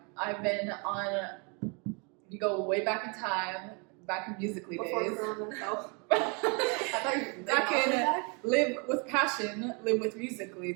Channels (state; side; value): quieter; left; 33.8 dB